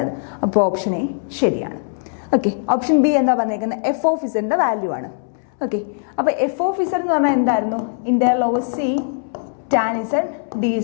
അപ്പോൾ ഓപ്ഷൻ എ ശരിയാണ്. ഓക്കെ, ഓപ്ഷൻ ബി എന്താ പറഞ്ഞേക്കുന്നത്? എഫ് ഓഫ് ഇസഡിന്റെ വാല്യൂ ആണ്. ഓക്കെ, അപ്പോൾ എഫ് ഓഫ് ഇസഡ് എന്ന് പറഞ്ഞാൽ എന്തായിരുന്നു? Integral over C tan Z D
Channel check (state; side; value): silent; right; 66 dB below the other